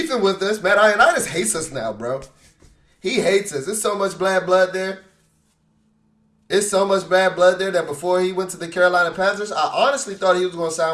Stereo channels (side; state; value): both; identical; correlation 1.00